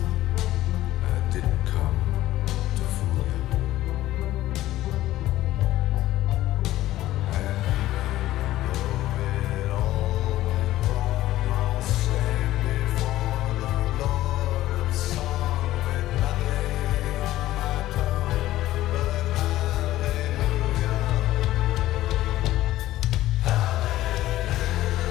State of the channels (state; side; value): quieter; right; 15.1 dB